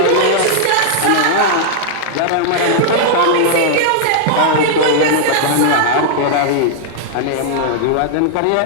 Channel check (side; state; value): both; different; correlation -0.01